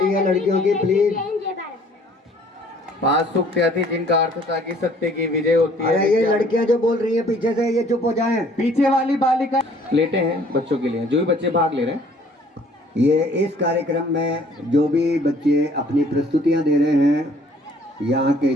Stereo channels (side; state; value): both; normal; correlation 0.57